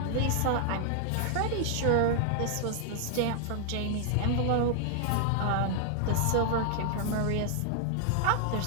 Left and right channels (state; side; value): different; both; correlation 0.00